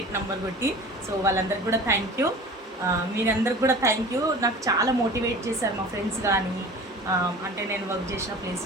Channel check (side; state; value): both; normal; correlation 0.40